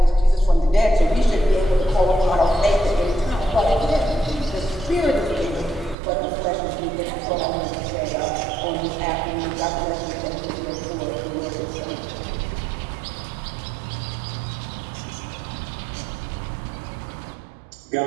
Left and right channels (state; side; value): drops out; left; at 6.0 s